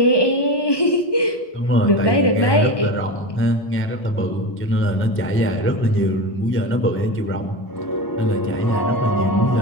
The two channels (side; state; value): right; late; 1.2 ms